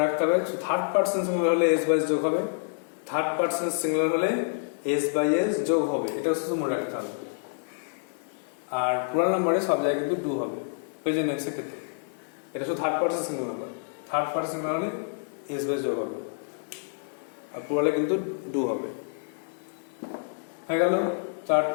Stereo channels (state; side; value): silent; right; digital silence